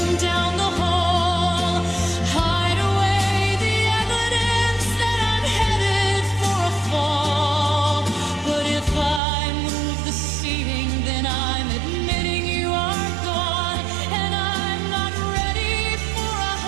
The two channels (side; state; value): left; drops out; at 9.2 s